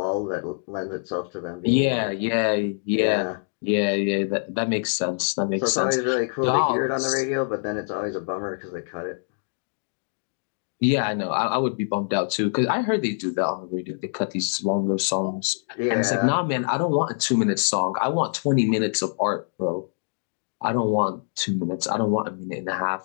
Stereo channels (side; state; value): right; silent; digital silence